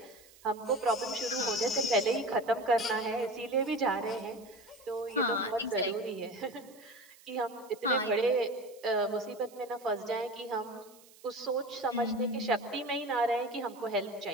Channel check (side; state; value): right; noise; hiss, 24 dB below the sound